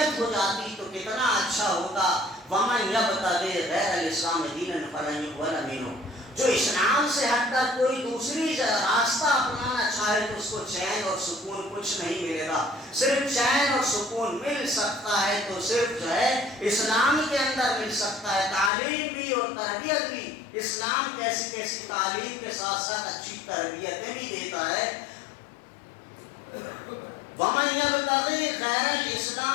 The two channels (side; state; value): right; drops out; at 18.7 s